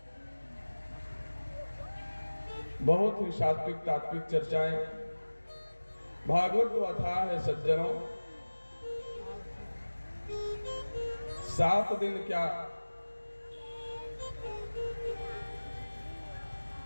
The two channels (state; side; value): inverted; both; correlation -1.00